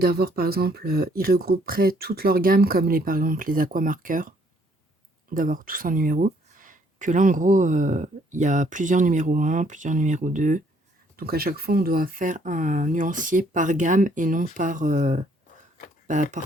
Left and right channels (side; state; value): both; normal; correlation 0.65